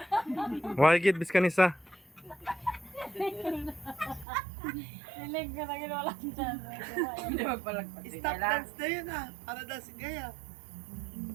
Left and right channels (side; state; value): left; drops out; at 4.2 s